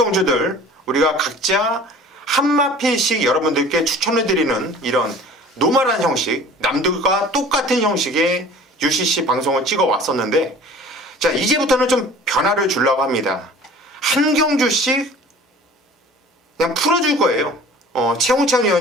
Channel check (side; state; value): both; normal; correlation 0.45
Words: 우리가 각자 한 마필씩 여러분들께 추천해드리는 이런 노멀한 형식, 남들과 똑같은 형식의 UCC 방송을 찍어 왔었는데, 자, 이제부터는 좀 변화를 주려고 합니다. 한 경주씩 그냥 풀어줄 거예요. 최홍찬